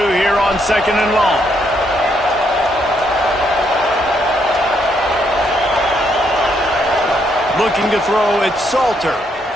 here on 2nd and long. Looking to throw, it's Salter.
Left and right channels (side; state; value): both; normal; correlation 0.74